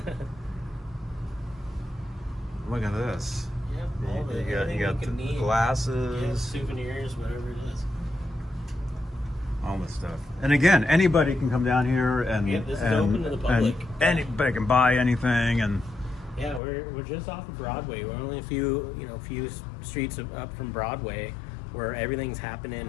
Look at this. You got the glasses. Souvenirs, whatever it is. All this stuff. And again, anybody can come down here and This is open to the public. And anybody can buy anything. And Yeah, we're just off of Broadway. We're only a few streets up from Broadway, where everything's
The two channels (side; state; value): right; drops out; at 16.6 s